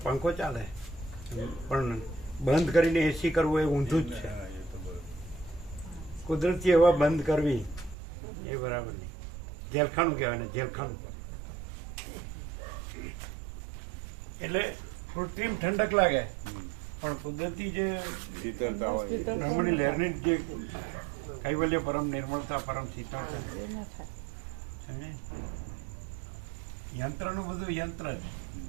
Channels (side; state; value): left; drops out; at 8.0 s